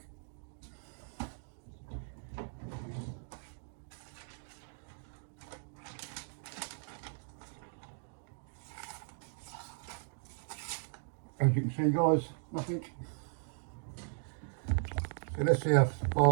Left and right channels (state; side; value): silent; left; digital silence